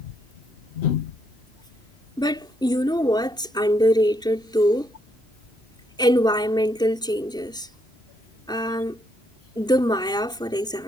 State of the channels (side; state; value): both; normal; correlation 0.74